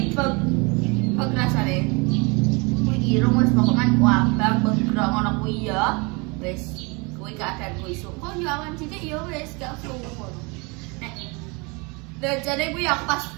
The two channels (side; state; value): left; quieter; 29.0 dB